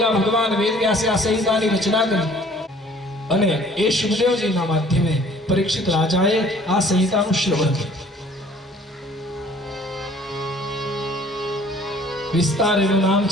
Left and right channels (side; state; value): both; normal; correlation 0.54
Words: ભગવાન વેદ વ્યાસે આ સંહિતાની રચના કરી અને એ શુભદેવજીના માધ્યમે પરીક્ષિત રાજાએ આ સંહિતાનું શ્રવણ કર્યું. વિસ્તાર એનું નામ